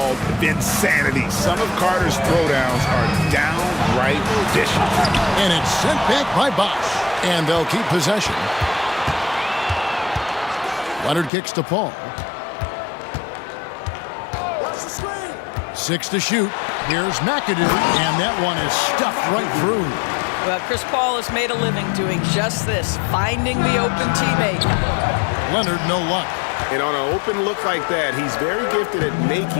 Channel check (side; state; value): right; drops out; at 11.3 s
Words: Vinsanity. Some of Carter's throwdowns are downright vicious. And it's sent back by Bosch. And they'll keep possession. Leonard kicks to Paul. 6 to shoot. Here's McAdoo, and that one is stuffed right through. Well, Chris Paul has made a living doing just this, finding the open teammate. Leonard, no luck. And on an open look like that, he's very gifted at